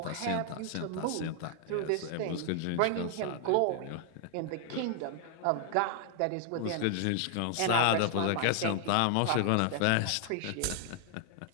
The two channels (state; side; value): different; both; correlation 0.00